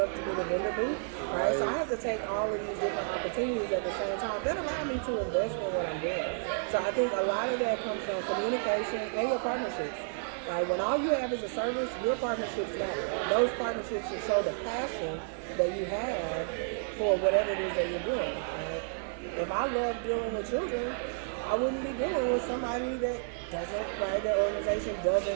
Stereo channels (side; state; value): left; silent; 57 dB below the other